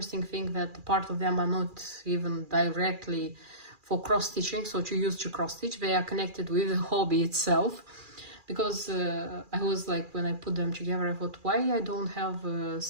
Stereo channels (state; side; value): late; left; 2.4 ms